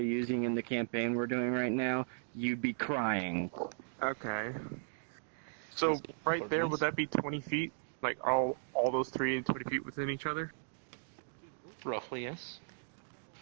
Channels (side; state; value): left; silent; digital silence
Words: using in the campaign we're doing right now, you'd be crying. Okay. So, right there, would that be 20 feet? Like, all those 3 and 20 feet within each other? Roughly, yes.